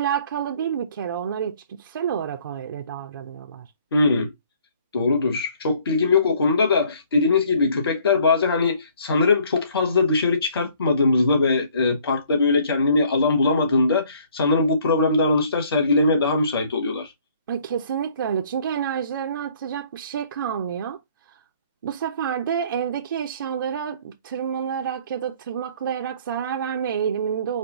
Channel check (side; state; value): both; inverted; correlation -0.59